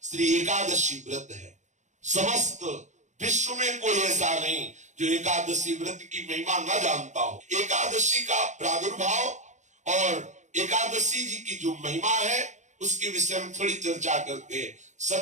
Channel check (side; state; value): left; late; 0.35 ms